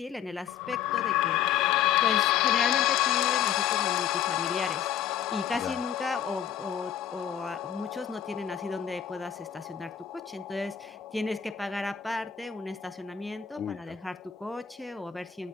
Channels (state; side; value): quieter; right; 9.3 dB